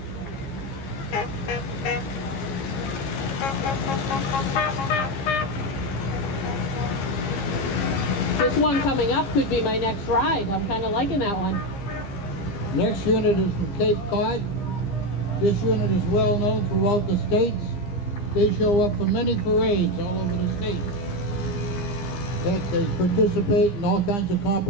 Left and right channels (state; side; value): late; right; 15 ms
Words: This one coming up could be my next ride. I'm kind of liking that one. Next unit is from Cape Cod. This unit is well known throughout the states. They show up for many parades all over the state. They participate in all kinds of